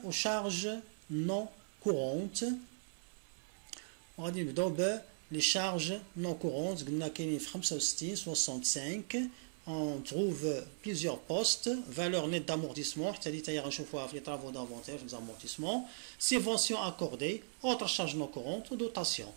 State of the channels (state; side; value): silent; left; 52 dB below the other